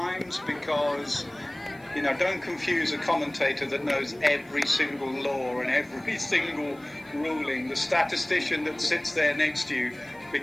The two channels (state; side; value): noise; right; hiss, 28 dB below the sound